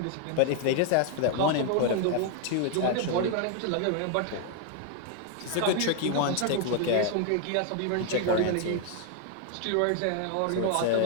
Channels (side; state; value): both; different; correlation 0.00